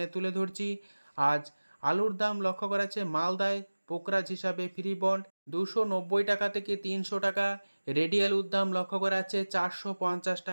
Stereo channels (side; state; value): both; inverted; correlation -1.00